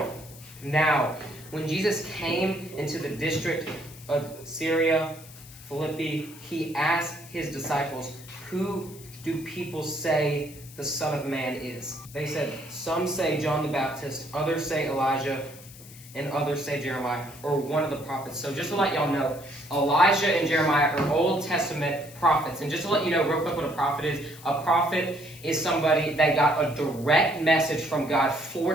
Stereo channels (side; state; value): left; noise; hiss, 19 dB below the sound